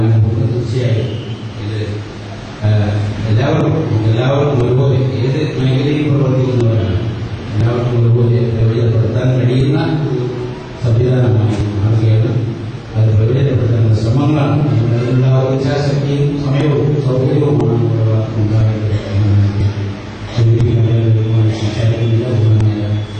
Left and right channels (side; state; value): both; identical; correlation 1.00